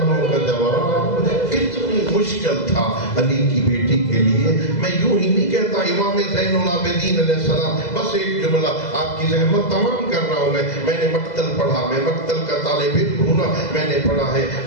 کا جواب کتنی مشکل تھا علی کی بیٹی کے لیے۔ میں یوں ہی نہیں کہتا امام زین العابدین علیہ السلام، بس ایک جملہ آپ کی زحمت تمام کر رہا ہوں میں نے مقتل پڑھا، میں مقتل کا طالب علم ہوں نا، میں نے پڑھا ہے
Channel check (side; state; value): right; late; 2.0 ms